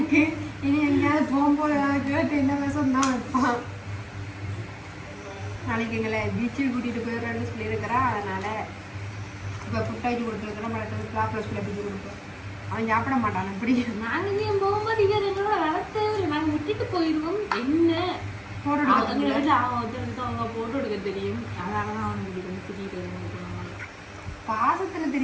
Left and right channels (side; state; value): both; identical; correlation 1.00